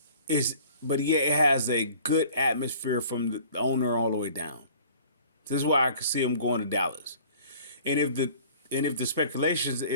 is but yet it has a good atmosphere from the owner all the way down. This is why I can see him going to Dallas. And if the speculations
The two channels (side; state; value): both; inverted; correlation -0.49